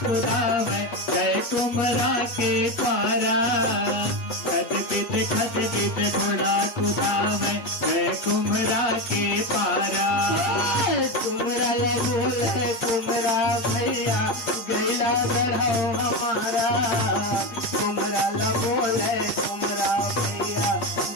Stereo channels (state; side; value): late; right; 8.3 ms